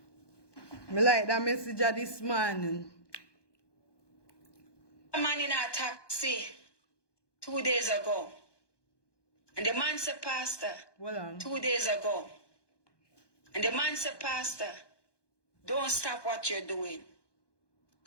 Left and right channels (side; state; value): right; late; 1.2 ms